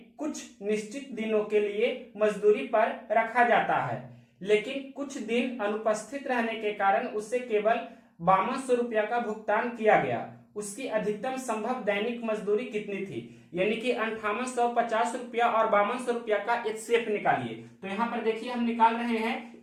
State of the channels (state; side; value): identical; both; correlation 1.00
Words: कुछ निश्चित दिनों के लिए मजदूरी पर रखा जाता है, लेकिन कुछ दिन अनुपस्थित रहने के कारण उसे केवल 5200 रुपया का भुगतान किया गया। उसकी अधिकतम संभव दैनिक मजदूरी कितनी थी? यानी कि 5850 रुपया और 5200 रुपया का एचसीएफ निकालिए। तो यहाँ पर देखिए हम निकाल रहे हैं